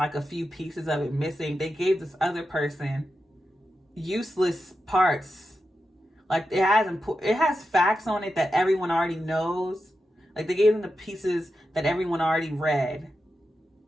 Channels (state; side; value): normal; both; correlation 0.89